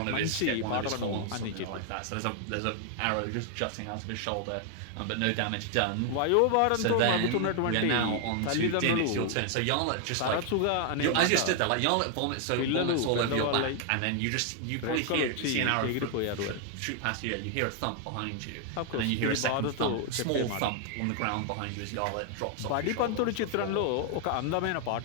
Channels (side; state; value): both; different; correlation 0.00